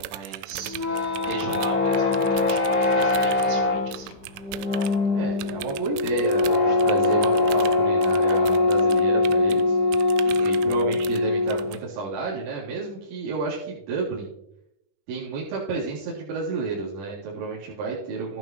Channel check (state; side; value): late; left; 21 ms